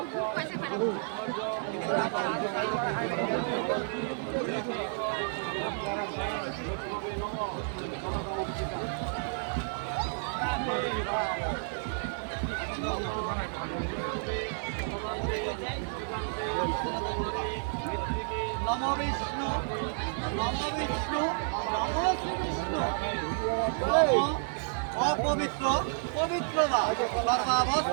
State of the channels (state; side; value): silent; left; 57 dB below the other